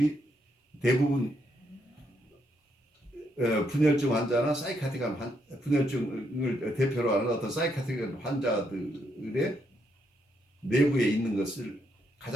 대부분 분열증 환자나 사이카틱한 분열증을 대표로 하는 어떤 사이카틱한 환자들의 내부에 있는 것을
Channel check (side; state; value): both; normal; correlation 0.77